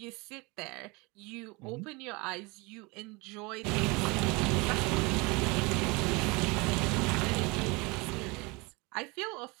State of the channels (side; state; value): left; quieter; 26.6 dB